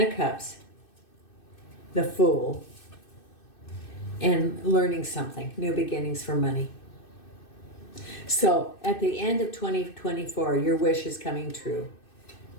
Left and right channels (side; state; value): right; late; 2.6 ms